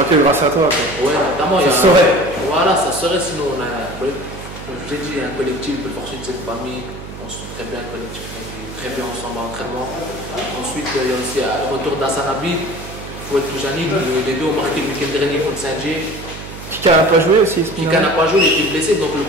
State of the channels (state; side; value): noise; right; hum, 12 dB below the sound